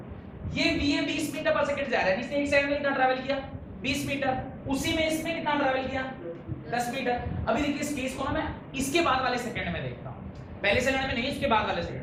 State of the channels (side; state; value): both; identical; correlation 1.00